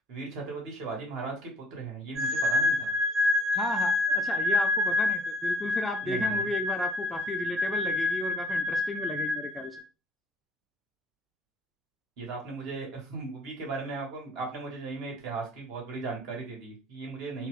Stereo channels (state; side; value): normal; both; correlation 0.59